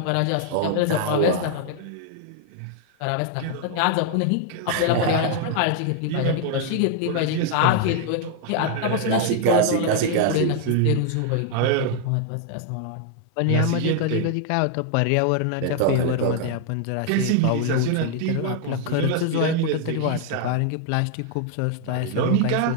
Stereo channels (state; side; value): different; both; correlation 0.00